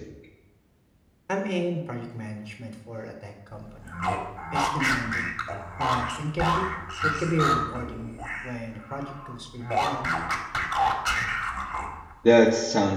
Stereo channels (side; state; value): both; identical; correlation 1.00